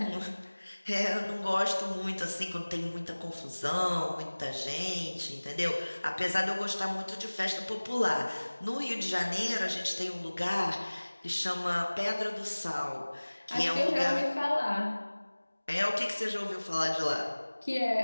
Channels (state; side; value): inverted; both; correlation -1.00